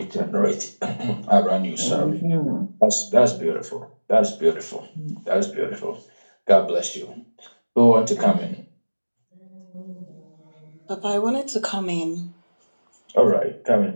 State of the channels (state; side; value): inverted; both; correlation -1.00